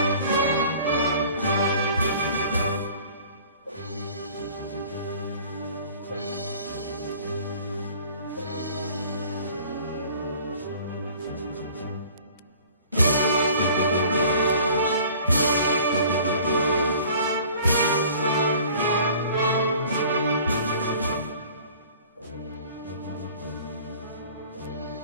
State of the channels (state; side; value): inverted; both; correlation -0.49